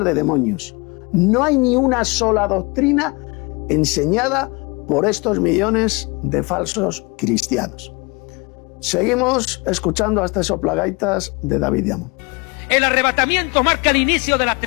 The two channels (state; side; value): quieter; right; 27.8 dB